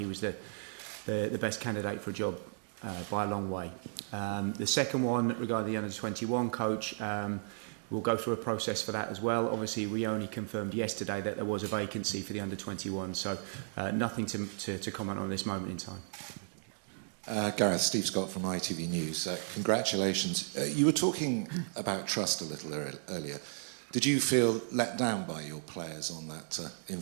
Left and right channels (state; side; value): silent; left; digital silence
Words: was the best candidate for a job by a long way. The second one, regarding the under-21 coach, we'll go through a process for that as well. Obviously, we only confirmed yesterday that there was a vacancy for the under-21, so nothing to comment on this moment in time. Gareth, Steve Scott from ITV News. Congratulations. You were talking about trust a little earlier. Did you feel let down by your players on that